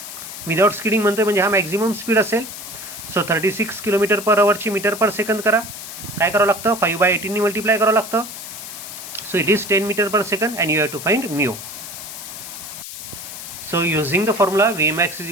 Without skidding म्हणतोय म्हणजे हा maximum speed असेल. So 36 kilometre per अवरची metre per second करा. काय करावं लागतं, 5/18 multiply करावं लागतं. So it is 10 metre per second and you have to find mu. So using the formula Vmax is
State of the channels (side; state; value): left; noise; hiss, 11 dB below the sound